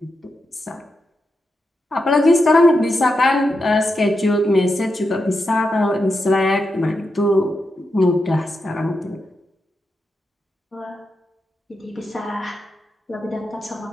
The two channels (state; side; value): normal; both; correlation 0.86